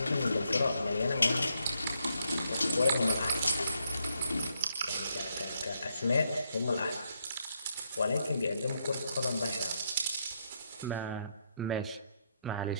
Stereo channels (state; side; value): inverted; both; correlation -0.77